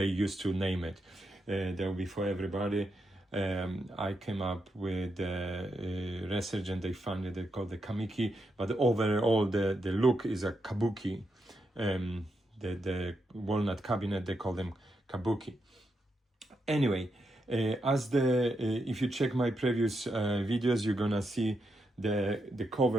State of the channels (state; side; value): normal; both; correlation 0.83